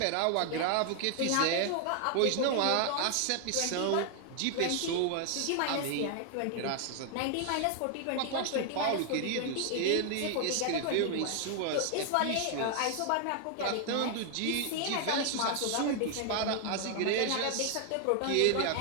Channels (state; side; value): different; both; correlation 0.00